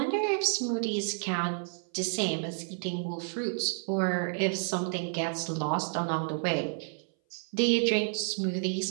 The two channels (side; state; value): left; silent; 58 dB below the other